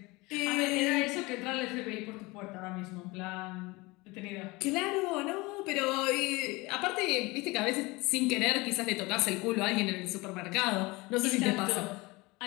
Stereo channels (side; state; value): right; quieter; 23.5 dB